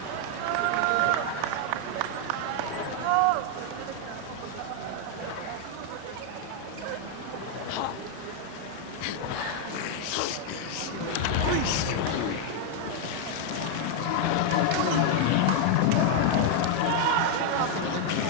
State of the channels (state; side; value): different; both; correlation 0.00